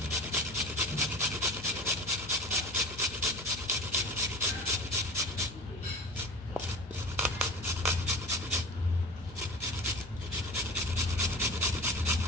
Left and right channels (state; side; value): normal; both; correlation 0.37